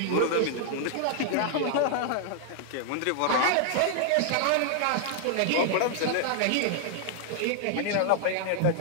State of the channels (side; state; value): both; different; correlation 0.00